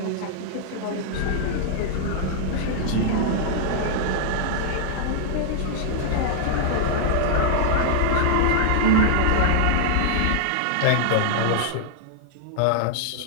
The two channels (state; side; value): different; both; correlation -0.01